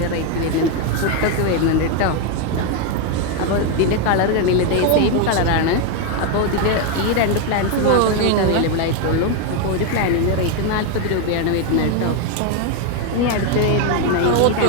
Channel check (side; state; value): both; different; correlation 0.01